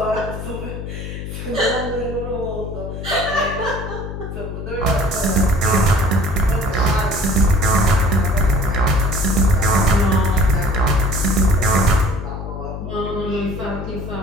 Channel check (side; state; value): left; noise; hum, 8 dB below the sound